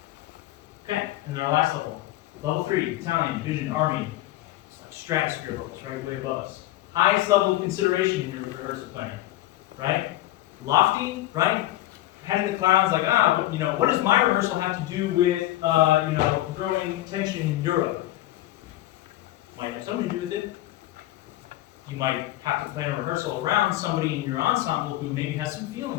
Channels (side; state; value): right; quieter; 15.5 dB